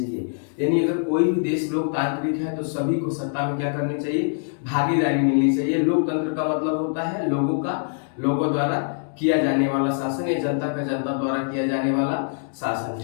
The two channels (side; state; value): right; silent; digital silence